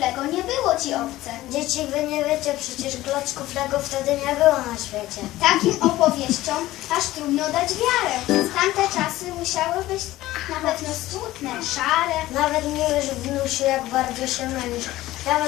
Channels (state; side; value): quieter; right; 16.3 dB